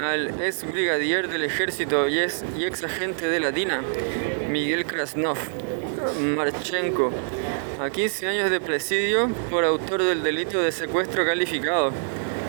al ex brigadier del ejército y ex agente de la DINA, Miguel Krasnov Marchenko, a 15 años de presidio por autor del delito de secuestro calificado.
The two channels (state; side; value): silent; left; 58 dB below the other